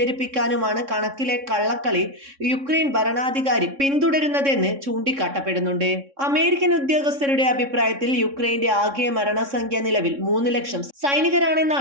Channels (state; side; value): late; left; 3.6 ms